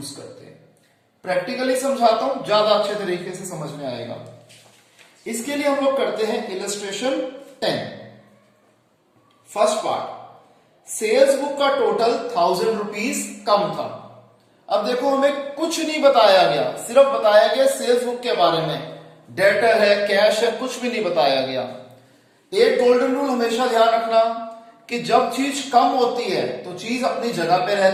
करते हैं। प्रैक्टिकली समझाता हूं, ज्यादा अच्छे तरीके से समझ में आएगा। इसके लिए हम लोग करते हैं illustration 10। First part, sales book का टोटल 1000 रुपीज कम था। अब देखो, हमें कुछ नहीं बताया गया, सिर्फ बताया गया सेल्स बुक के बारे में, डेटर है, कैश है, कुछ भी नहीं बताया गया। एक गोल्डन रूल हमेशा ध्यान रखना कि जब चीज कम होती है तो चीज अपनी जगह पे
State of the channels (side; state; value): both; identical; correlation 1.00